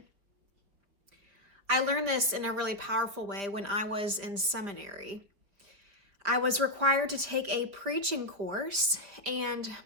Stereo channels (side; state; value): left; late; 5.2 ms